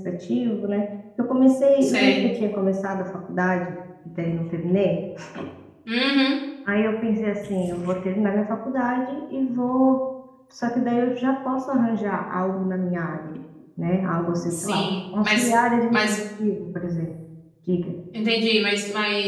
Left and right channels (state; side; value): identical; both; correlation 1.00